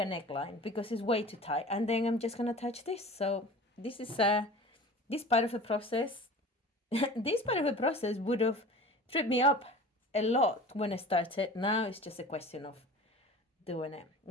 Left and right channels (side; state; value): both; normal; correlation 0.39